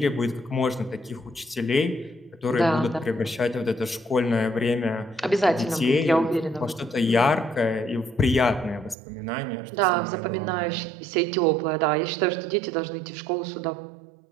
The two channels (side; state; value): left; drops out; at 9.0 s